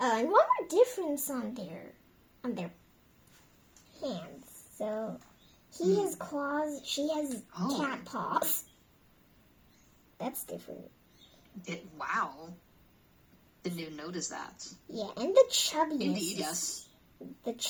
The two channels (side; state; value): both; identical; correlation 1.00